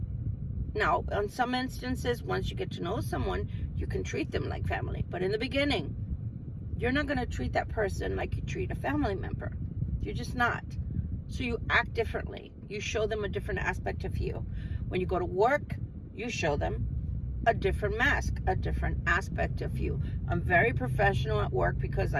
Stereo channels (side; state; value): both; identical; correlation 1.00